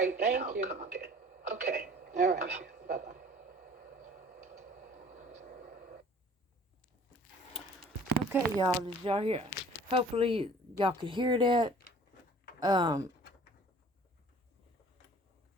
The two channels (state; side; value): normal; both; correlation 0.50